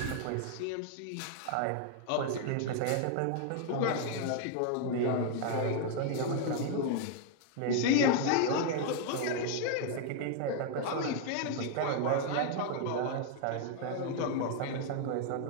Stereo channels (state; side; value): different; both; correlation 0.00